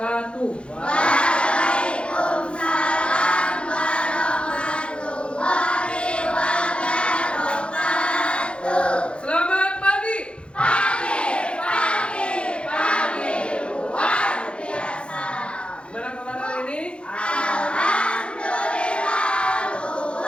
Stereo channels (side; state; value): right; late; 0.057 ms